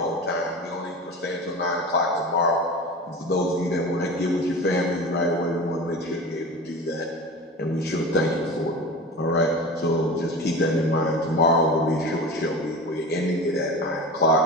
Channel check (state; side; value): normal; both; correlation 0.32